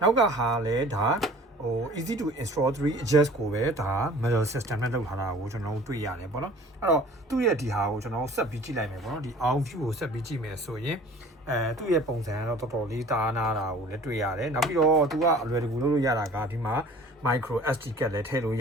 နောက်ကဟာလည်းဒါeasy to install 3 adjust ကိုပဲဒါ metal system နဲ့လုပ်ထားတာကိုကျွန်တော်တို့တွေ့ရတယ်ပေါ့နော်အဲ့တော့သူ့ရဲ့ဒီဟာကိုကျွန်တော်ဆက်ပြီးကြည့်လိုက်မယ်ပေါ့နော်ဒီ Arm View ကိုဆက်ပြီးကြည့်မယ်ဆိုရင်သူ့ရဲ့ပုံစံကတော့တော်တော်လေးတားနာတာကိုလည်းတွေ့ရတယ်နောက်ပြီးတော့သူကအလွယ်တကူလုပ်လို့ရတာကဒီမှာ micro SD card လည်းထည့်လို့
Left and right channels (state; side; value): normal; both; correlation 0.48